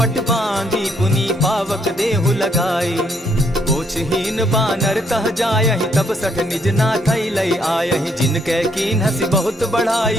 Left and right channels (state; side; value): normal; both; correlation 0.71